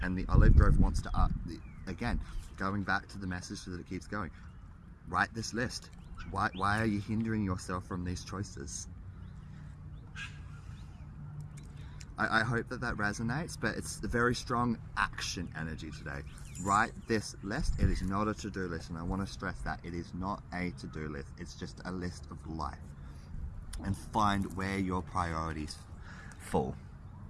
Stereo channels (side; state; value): both; identical; correlation 1.00